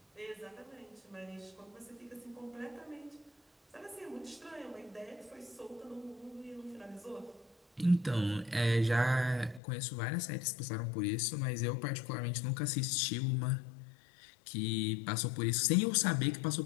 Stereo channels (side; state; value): right; drops out; at 9.6 s